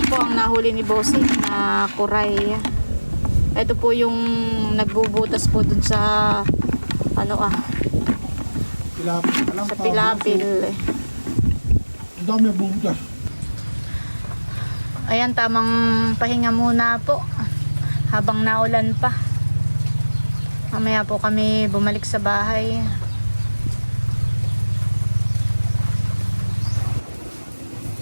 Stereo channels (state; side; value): inverted; both; correlation -1.00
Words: po ang nahuli ni Bossing na kuray. Ito po yung nagbubutas po dun sa sa pilapil. Ang dami ang bubutas. Ayan, tamang pahinga muna po habang naulan pa. Mamaya po kami bumalik sa bahay.